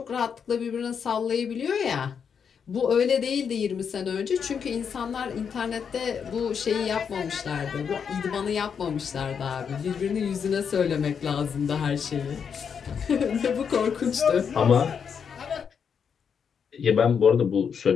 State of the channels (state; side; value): quieter; right; 6.9 dB